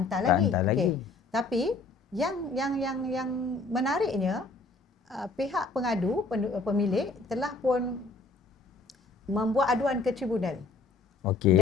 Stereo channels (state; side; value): quieter; right; 3.7 dB